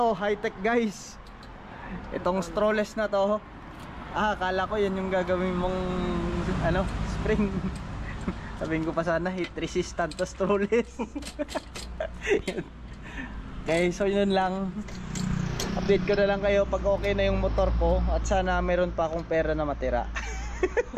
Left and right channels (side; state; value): both; identical; correlation 1.00